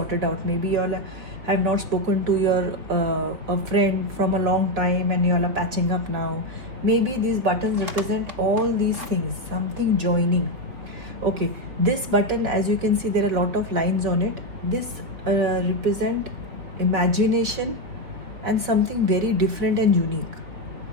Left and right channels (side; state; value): left; late; 3.5 ms